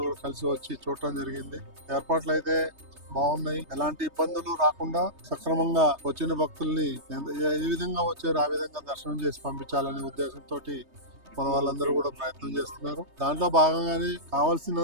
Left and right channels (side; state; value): left; late; 3.2 ms